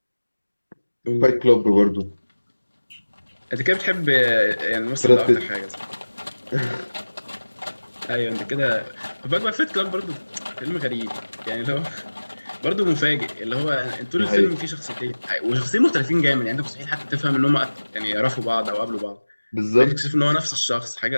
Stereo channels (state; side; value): inverted; both; correlation -1.00